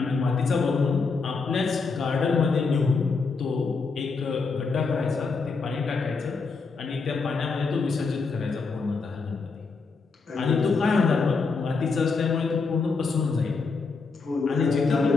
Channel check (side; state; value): right; quieter; 4.5 dB